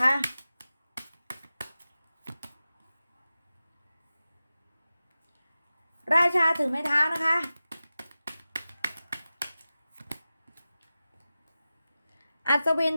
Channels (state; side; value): inverted; both; correlation -0.95